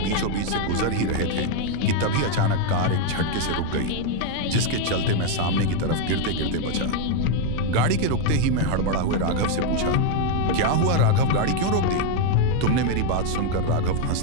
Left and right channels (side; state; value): both; different; correlation 0.01